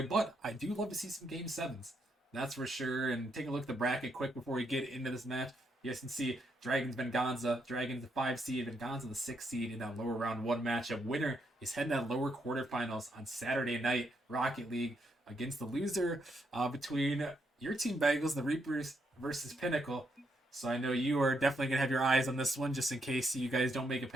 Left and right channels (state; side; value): normal; both; correlation 0.78